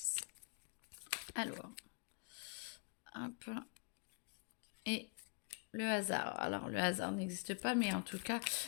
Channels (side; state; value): right; quieter; 37.8 dB